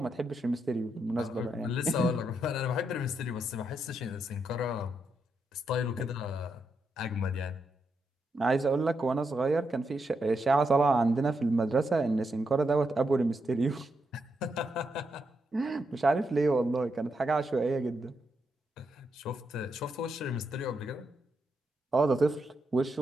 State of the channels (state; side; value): normal; both; correlation 0.82